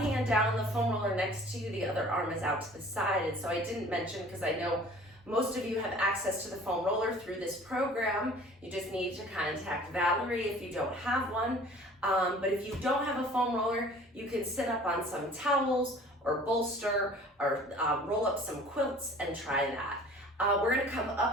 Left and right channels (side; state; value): both; normal; correlation 0.48